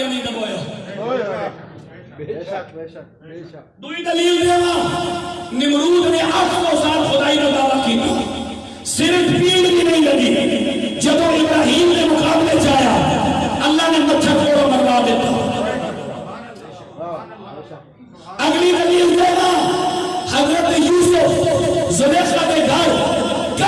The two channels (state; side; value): identical; both; correlation 1.00